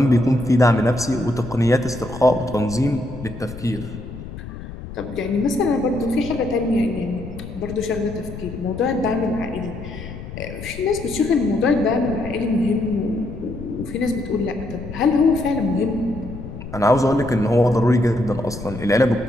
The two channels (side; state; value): left; noise; rumble, 11 dB below the sound